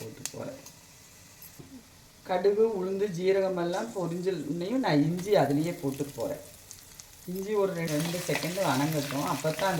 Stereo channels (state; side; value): identical; both; correlation 1.00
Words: போகிறேன். கடுகு உளுந்து ஜீரகமெல்லாம் பொரிஞ்சல்னையும் நான் இஞ்சி அதுலேயே போட்டு போகிறேன். இஞ்சி ஒரு 2 செகண்டு வணங்கட்டும். அப்போ தான்